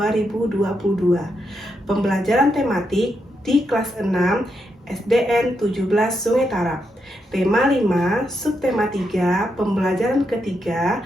Pembelajaran tematik di kelas 6 SDN 17 Sungai Tarap. Tema 5, subtema 3, pembelajaran ketiga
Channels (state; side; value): normal; both; correlation 0.82